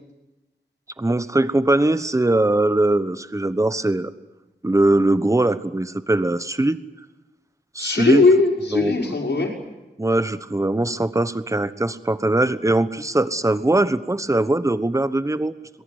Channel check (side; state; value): both; normal; correlation 0.78